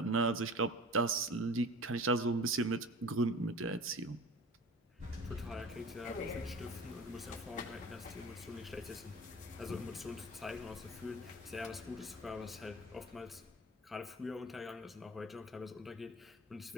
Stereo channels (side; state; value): both; normal; correlation 0.39